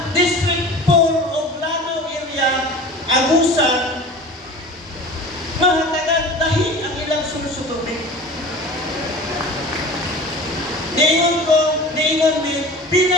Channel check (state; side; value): normal; both; correlation 0.38